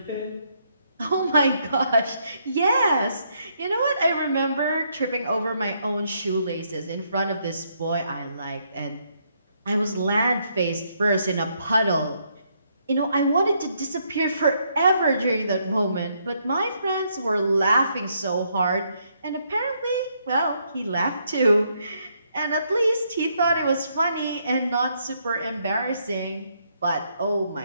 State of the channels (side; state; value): both; inverted; correlation -0.74